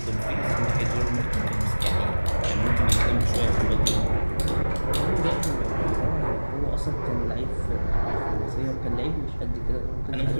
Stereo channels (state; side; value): inverted; both; correlation -1.00